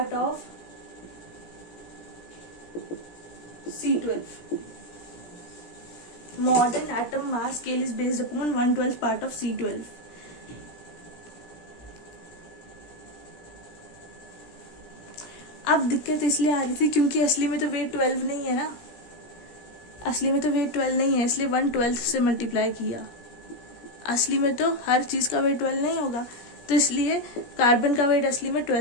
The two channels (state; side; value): late; right; 17 ms